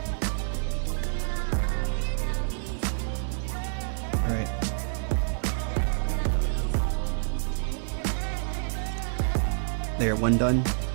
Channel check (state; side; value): silent; left; digital silence